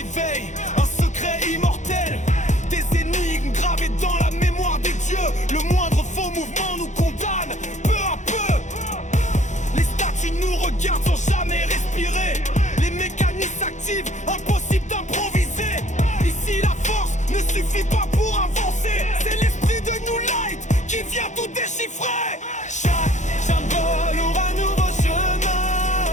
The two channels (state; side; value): late; right; 0.35 ms